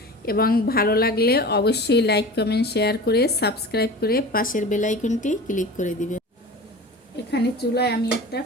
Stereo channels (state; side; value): normal; both; correlation 0.35